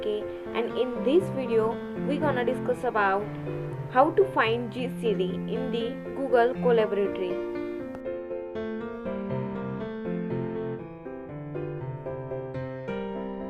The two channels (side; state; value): both; identical; correlation 1.00